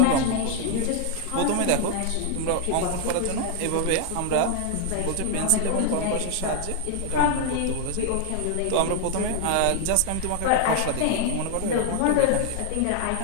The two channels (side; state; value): both; different; correlation 0.00